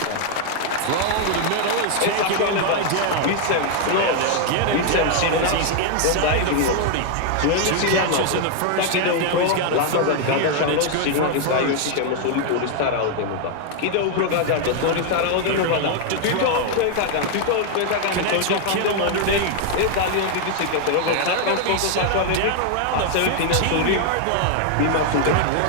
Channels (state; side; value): different; both; correlation 0.00